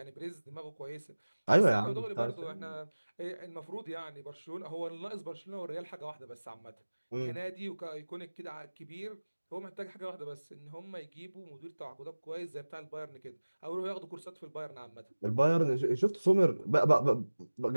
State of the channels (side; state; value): both; inverted; correlation -1.00